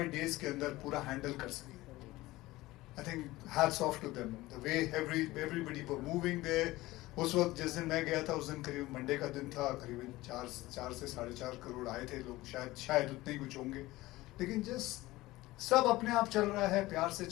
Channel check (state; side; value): quieter; right; 18.5 dB